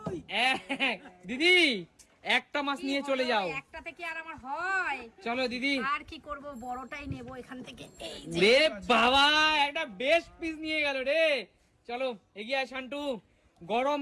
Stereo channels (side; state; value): both; identical; correlation 1.00